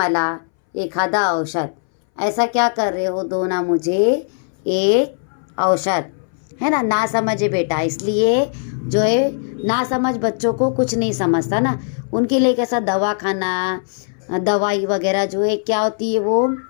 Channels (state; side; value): silent; right; 63 dB below the other